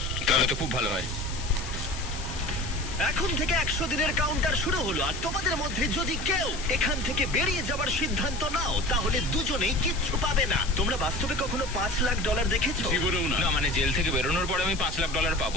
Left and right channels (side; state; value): left; noise; hiss, 11 dB below the sound